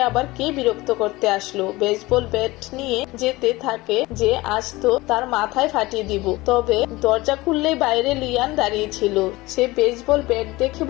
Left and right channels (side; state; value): right; quieter; 20.3 dB